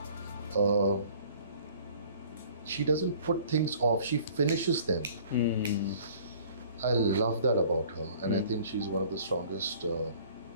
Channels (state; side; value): inverted; both; correlation -0.52